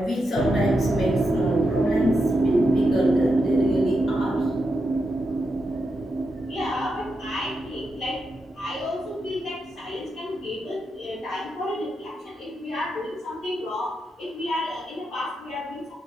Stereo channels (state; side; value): normal; both; correlation 0.86